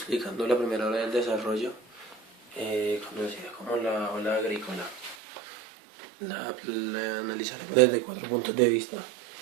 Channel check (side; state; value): left; drops out; at 5.2 s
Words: la primera ola del desarrollo, conocida como la ola agrícola. La analizaremos desde 4 puntos de vista: